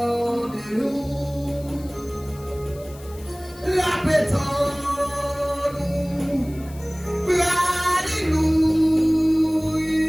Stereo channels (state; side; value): noise; left; hiss, 22 dB below the sound